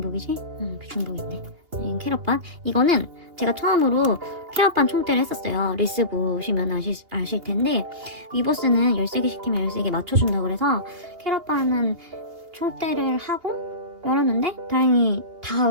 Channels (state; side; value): late; left; 2.8 ms